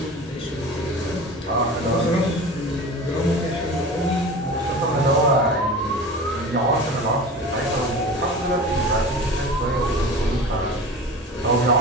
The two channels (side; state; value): both; normal; correlation 0.35